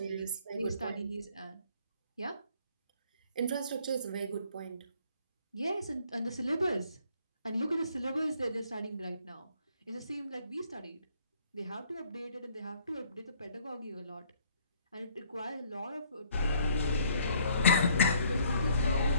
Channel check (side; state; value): both; inverted; correlation -0.61